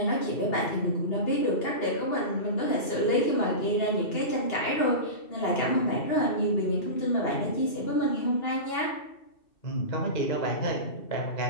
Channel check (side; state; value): right; late; 2.7 ms